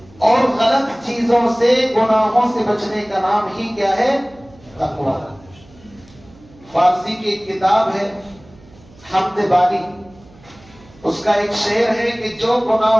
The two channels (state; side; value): noise; right; hum, 25 dB below the sound